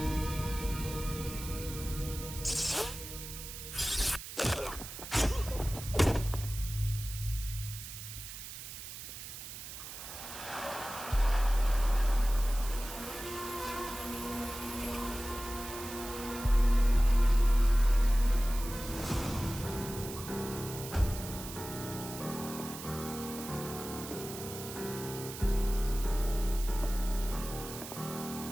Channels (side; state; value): right; noise; hiss, 10 dB below the sound